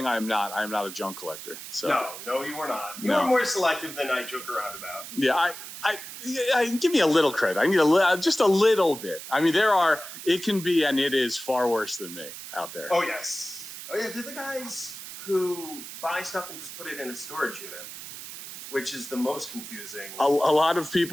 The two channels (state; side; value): noise; right; hiss, 11 dB below the sound